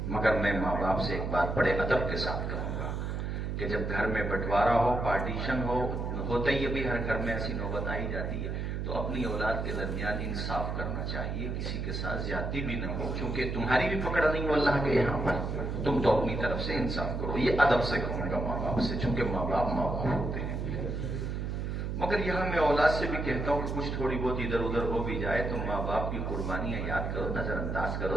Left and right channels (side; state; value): right; noise; hum, 2 dB below the sound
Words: مگر میں ماں باپ سے ایک بات بڑے ادب کے ساتھ کہوں گا کہ جب گھر میں بٹوارا ہو، پارٹیشن ہوتا ہی ابھی ہر گھر میں ایسی نوبت آئی جاتی ہے، تو اپنی اولاد کے درمیان انصاف کرنا چاہیے، کسی کے ساتھ زیادتی بھی نہ ہو، کیونکہ تمہاری بھی پکڑ نہیں ہو اللہ کے یہاں پر، تم تو اپنی طرف سے انصاف کرو۔ یہ ادب سے کہوں گا ماں باپ سے، چونکہ ماں باپ ہوتے ہیں۔ مگر یہاں میں اولاد سے بھی کہتا ہوں کہ کچھ تھوڑی بہت ادھر ادھر ہو بھی جائے تو ماں باپ کی قربانیاں یاد کرو، نظر انداز کرو،